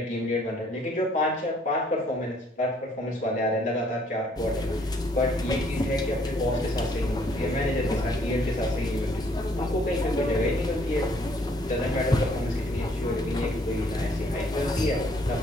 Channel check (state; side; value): normal; both; correlation 0.64